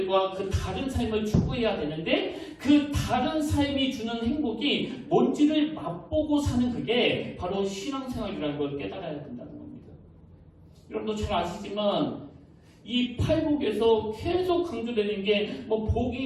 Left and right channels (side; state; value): both; identical; correlation 1.00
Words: 그 다른 삶을 추구해야 되는데 그 다른 삶이 주는 행복이 뭔지를 맛보고 사는 그게 바로 신앙생활이라는 걸 깨달아야 된다는 겁니다. 여러분도 잘 아시지만 이 팔복에서 계속 강조되는 게 뭐